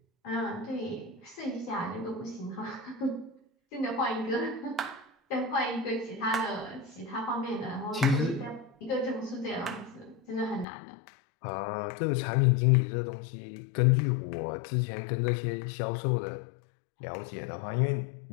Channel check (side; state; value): right; drops out; at 10.7 s